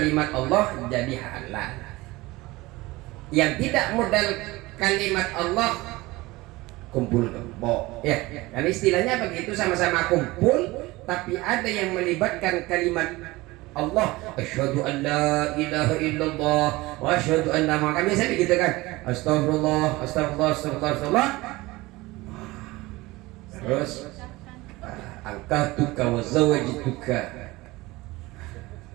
Allah jadi halal. Yang tidak modal kalimat Allah kumpul kebo, ya kan istilahnya begitu, sama-sama kumpul tapi ada yang melibatkan kalimat Allah. Asyhadu an la ilaha illallah wa asyhadu anna Muhammadan, biasa begitu kan, astagfirullah astagfirullah astagfirullah, terus angkatuka wa zawajituka,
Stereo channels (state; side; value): quieter; left; 20.7 dB